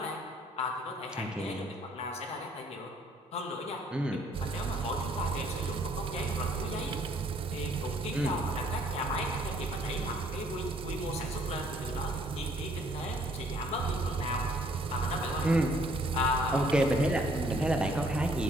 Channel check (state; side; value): normal; both; correlation 0.63